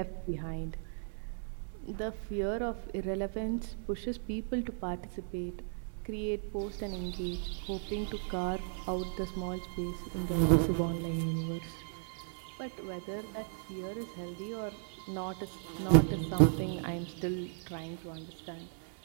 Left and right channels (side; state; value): left; silent; 54 dB below the other